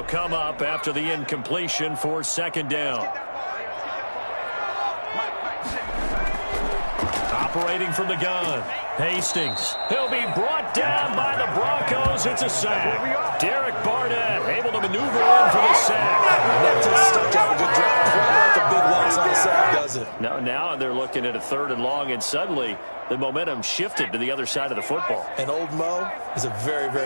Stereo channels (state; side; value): inverted; both; correlation -1.00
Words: come up after the incompletion for 2nd down. Operating from the gun. Hastings. He'll be brought down by the Broncos. It's a sack. Derek Barnett able to maneuver in for the sack. does it? No, now they're looking at a 3rd and long, and suddenly the momentum shifted to the other side of the football. And old Mo is a very,